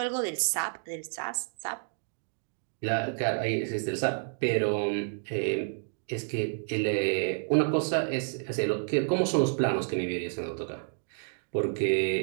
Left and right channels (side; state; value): left; silent; digital silence